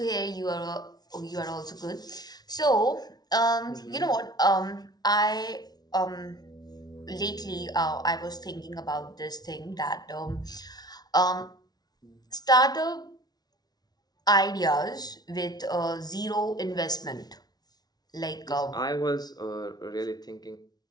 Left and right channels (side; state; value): right; late; 0.19 ms